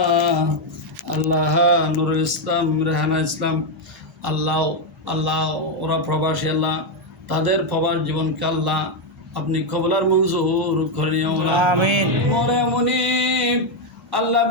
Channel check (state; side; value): normal; both; correlation 0.03